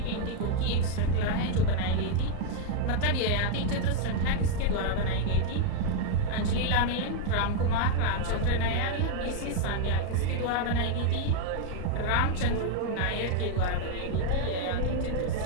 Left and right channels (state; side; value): different; both; correlation 0.00